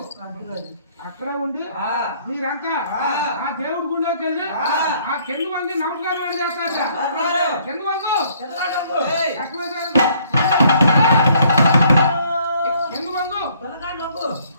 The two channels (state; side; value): inverted; both; correlation -0.63